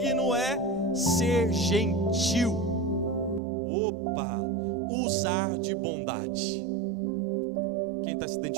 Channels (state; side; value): drops out; left; at 3.4 s